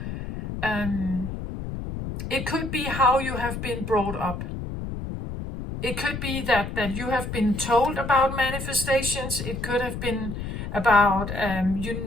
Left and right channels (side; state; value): left; noise; rumble, 6 dB below the sound